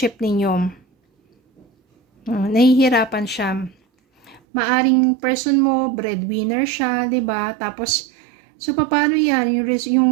ninyo. Nahihirapan siya. Maaring person mo, breadwinner siya, 'di ba? Tapos so paano 'yan?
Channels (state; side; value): drops out; left; at 4.4 s